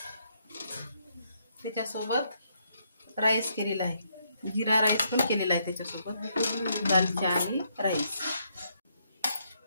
त्याच्यासोबत राईस केलेला आहे, जिरा राईस पण केलेला आहे त्याच्यासोबत, दालचा आणि राईस।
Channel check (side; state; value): both; inverted; correlation -0.75